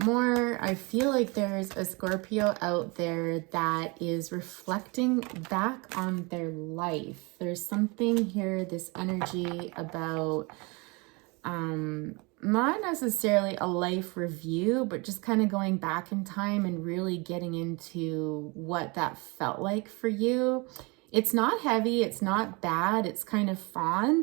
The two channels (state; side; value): quieter; left; 27.8 dB